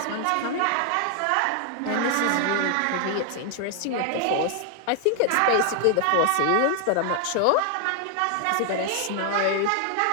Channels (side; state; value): both; different; correlation 0.00